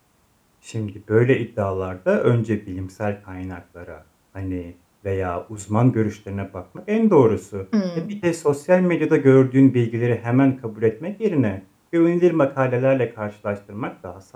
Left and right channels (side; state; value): both; identical; correlation 1.00